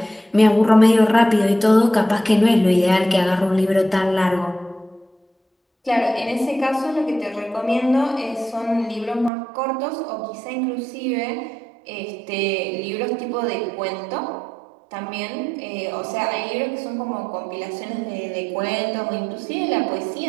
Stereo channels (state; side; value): drops out; left; at 9.3 s